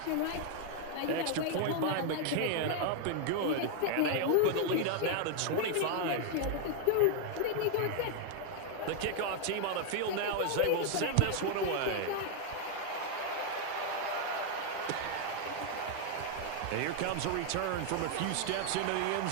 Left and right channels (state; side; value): different; both; correlation 0.00